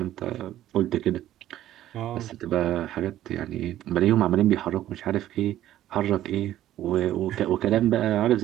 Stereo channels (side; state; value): left; quieter; 13.0 dB